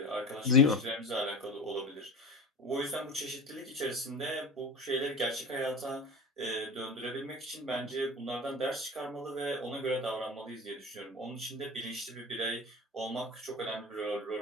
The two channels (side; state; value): both; normal; correlation 0.32